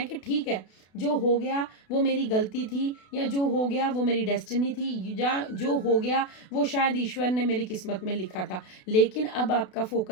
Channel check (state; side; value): late; right; 32 ms